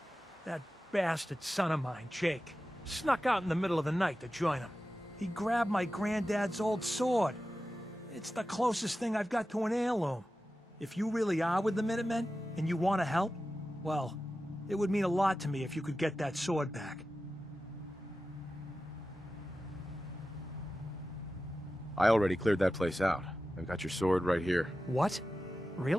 That bastard son of mine, Jake, snuck out in the middle of the night to join them. He grabbed my granddad's old sword. It's the closest thing I've got to an heirloom. If you really are with the Minutemen, and you want to help, well, it would mean a lot to me if you could get that sword back. I already cleared that place out. I've got your sword right here. What?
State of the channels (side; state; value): both; normal; correlation 0.93